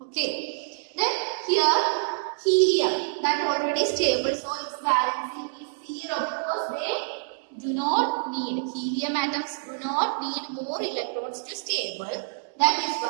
Okay. Then here helium, that already stable, so its valency is 0 because they do not need, helium atoms do not need more electrons to stable. That is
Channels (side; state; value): left; silent; digital silence